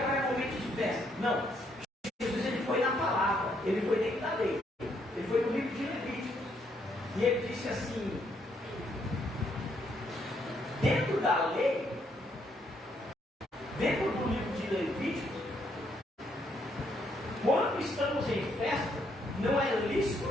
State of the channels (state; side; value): normal; both; correlation 0.73